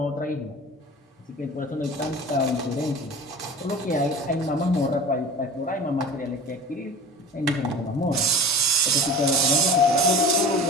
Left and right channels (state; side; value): normal; both; correlation 0.37